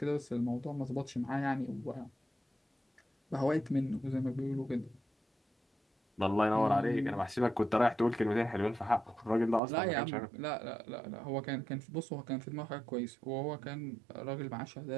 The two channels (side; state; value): left; drops out; at 9.6 s